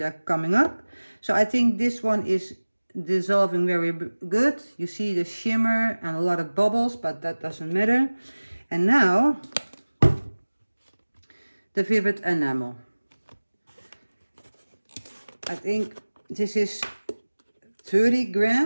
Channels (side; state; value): both; inverted; correlation -1.00